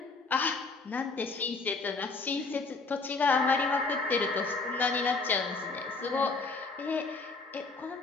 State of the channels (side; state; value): right; quieter; 3.9 dB